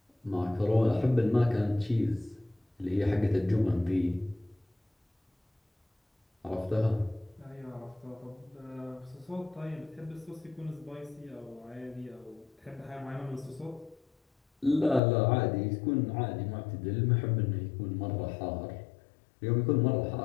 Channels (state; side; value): drops out; right; at 15.0 s